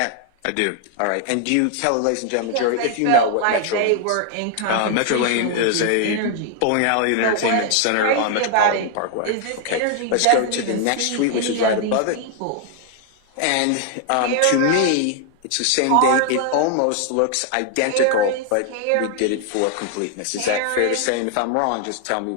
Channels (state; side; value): different; both; correlation 0.00